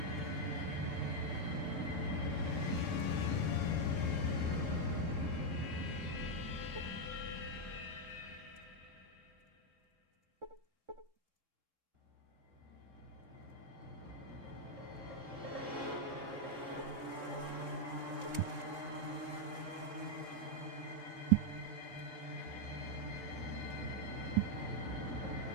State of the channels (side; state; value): left; late; 3.7 ms